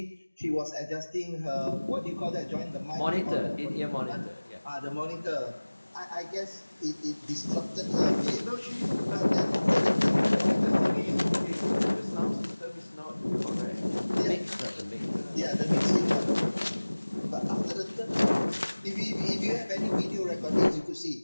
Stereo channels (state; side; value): inverted; both; correlation -1.00